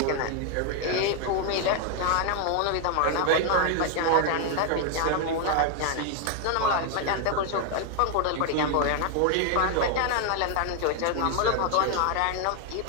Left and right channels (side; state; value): both; different; correlation 0.00